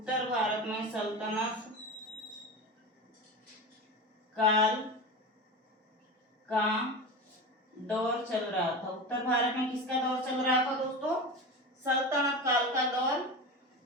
भारत में सल्तनत काल का दौर चल रहा था। उत्तर भारत में किसका दौर चल रहा था दोस्तों? सल्तनत काल का दौर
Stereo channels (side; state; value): both; normal; correlation 0.26